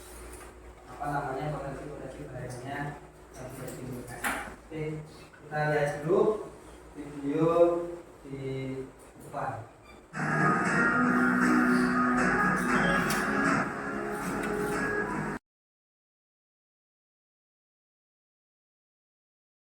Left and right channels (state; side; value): identical; both; correlation 1.00